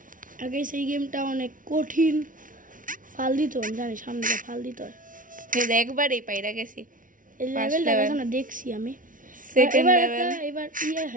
আগে সেই গেমটা অনেক কঠিন, ফাল দিত জানি, সামনে যা ফাল দিত একবারই পাইরা গেছি। এই লেভেলটা এখন দেখছি আমি। সেকেন্ড লেভেল এবার ইয়ে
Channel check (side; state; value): left; late; 0.38 ms